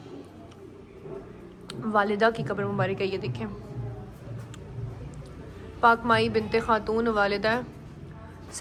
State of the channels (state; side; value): identical; both; correlation 1.00